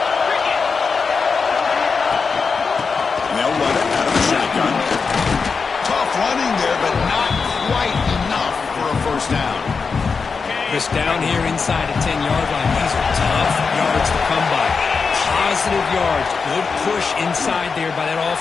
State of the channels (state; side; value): quieter; right; 5.1 dB